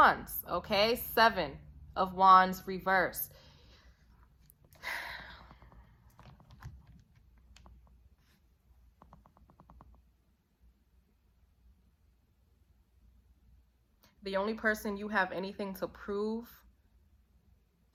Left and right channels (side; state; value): both; identical; correlation 1.00